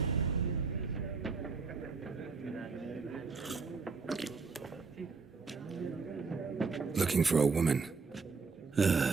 Looking for a woman.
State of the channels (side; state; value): left; quieter; 4.7 dB